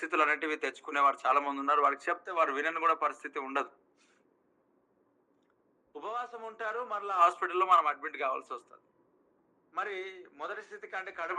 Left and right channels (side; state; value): both; identical; correlation 1.00